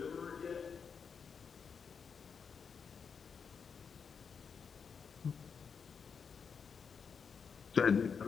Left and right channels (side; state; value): right; quieter; 6.2 dB